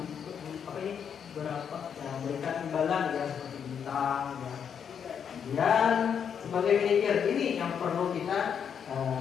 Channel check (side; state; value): right; quieter; 7.6 dB